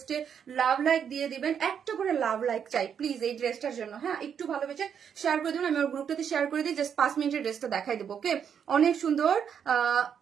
লাভ লাইক দিয়ে দিবেন, একটা করে লাভ লাইক চাই প্লিজ এই ড্রেসটার জন্য। হ্যাঁ একটু ভালোবেসে শেয়ার করে দেবেন, আমি আমার গ্রুপটাতে শেয়ার করে দিই, জাস্ট 5 মিনিটের ড্রেসটা দেখাই দেবো। ওকে অনেক সুন্দর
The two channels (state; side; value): quieter; left; 7.8 dB